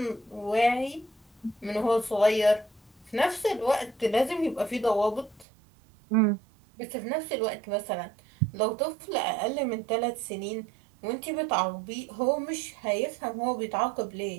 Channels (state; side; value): drops out; left; at 5.5 s